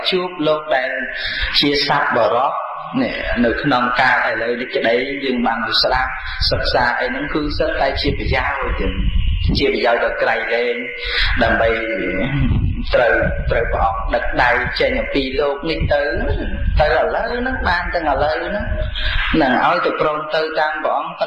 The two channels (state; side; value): identical; both; correlation 1.00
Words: chuốc lô đại chia sắp vào đó nè nơi nông ca tại lời đi cái đấy nhưng bằng được sắp sắp xa ấy nó cứ rất tay chia bị giao rồi chia bị giao được cái lên đầm bay trời bỏ đặt đầy trên những pi lô nghịch tới là lớn nó ban tới là lớn nó nàng ơi từ pron tới tam bọn